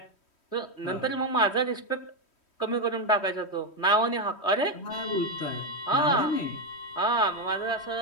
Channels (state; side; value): late; right; 3.1 ms